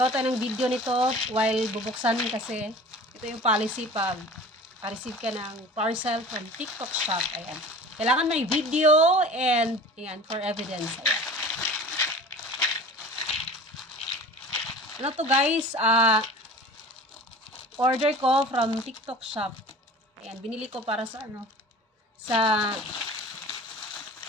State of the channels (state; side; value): normal; both; correlation 0.40